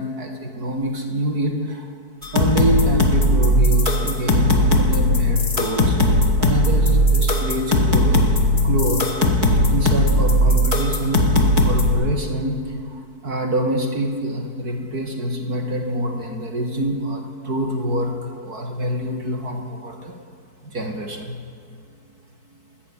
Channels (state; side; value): late; left; 4.6 ms